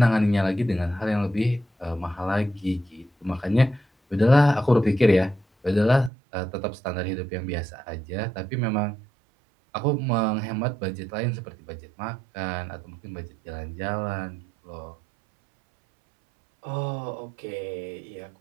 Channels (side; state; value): left; drops out; at 6.1 s